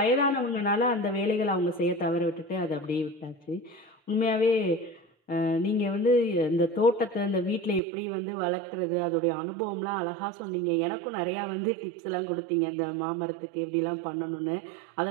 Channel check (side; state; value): left; drops out; at 7.8 s